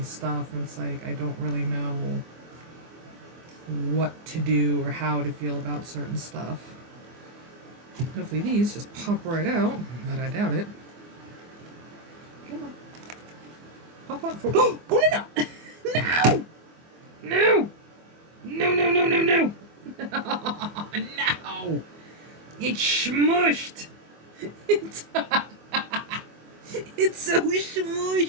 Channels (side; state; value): left; late; 24 ms